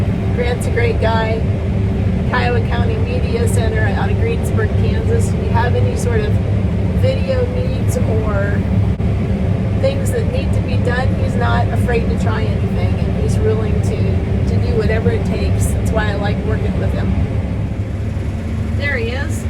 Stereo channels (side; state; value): both; identical; correlation 1.00